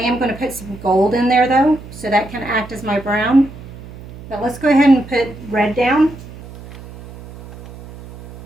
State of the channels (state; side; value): noise; right; hum, 16 dB below the sound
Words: going to put some gold in there though, so that can act as my brown. But let's go ahead and put red down.